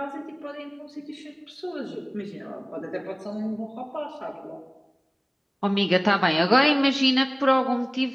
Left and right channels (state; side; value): identical; both; correlation 1.00